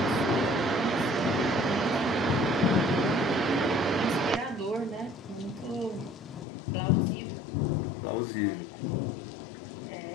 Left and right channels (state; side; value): drops out; right; at 6.5 s